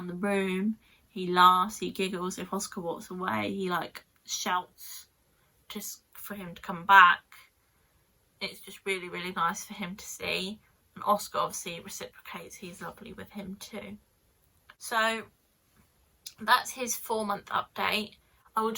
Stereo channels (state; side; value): identical; both; correlation 1.00